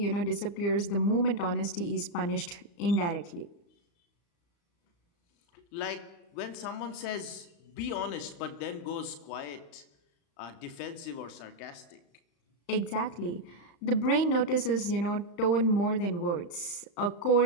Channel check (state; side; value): late; right; 35 ms